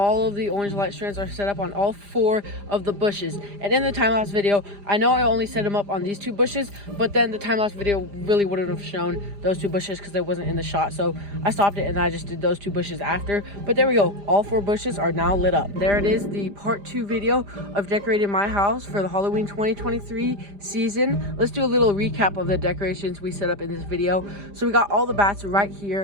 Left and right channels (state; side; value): late; left; 5.0 ms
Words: of the orange light strands are set up on all 4 of the bushes. And in the time-lapse video, I know I only set them up on these 2 bushes, but then the time-lapse video really wouldn't have shown those 2 bushes because they wasn't in the shot. So I stopped it and I just did those 2 bushes after. But there we go. All 4 bushes are now lit up. There it is, the part 2 video of decorating my house for the Halloween 2023 season. Let's do a little recap of the decorations we set up in this video. So we got all the bats right